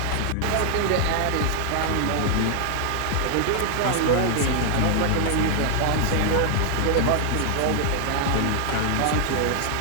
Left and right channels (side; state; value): both; different; correlation 0.00